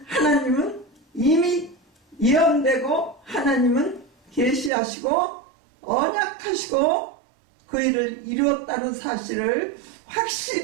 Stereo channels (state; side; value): drops out; left; at 4.7 s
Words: 하나님은 이미 예언되고 하나님은 계시하시고 언약하시고 그 일을 이루었다는 사실을